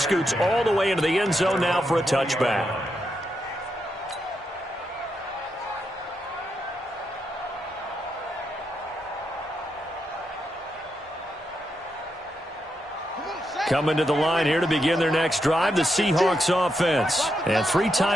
all the way into the end zone now for a touchback. Coming to the line here to begin their next drive, the Seahawks offense. And 3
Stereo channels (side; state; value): both; normal; correlation 0.83